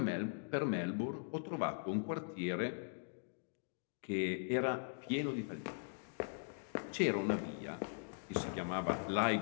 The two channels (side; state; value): right; silent; digital silence